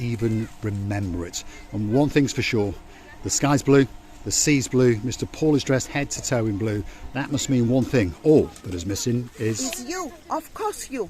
remember it. And one thing's for sure, the sky's blue, the sea's blue, Mr. Paul is dressed head to toe in blue. That must mean one thing, all that is missing is... It's you, of course you.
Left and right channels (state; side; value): identical; both; correlation 1.00